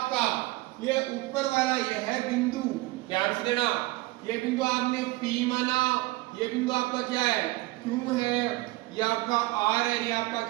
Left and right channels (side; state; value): left; quieter; 20.3 dB